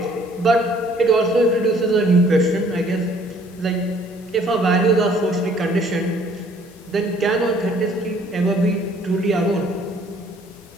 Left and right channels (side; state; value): both; normal; correlation 0.59